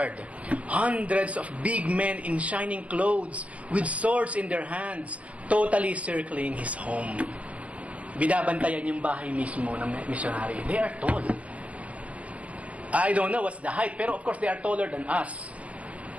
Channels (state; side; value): late; left; 0.065 ms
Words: Hundreds of big men in shining clothes with swords in their hands, totally circling his home. Binabantayan yung bahay mismo ng missionary. They are tall. I don't know what's the height, pero of course they are taller than us.